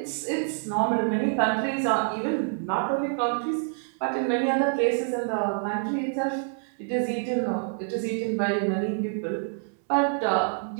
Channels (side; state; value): left; silent; 60 dB below the other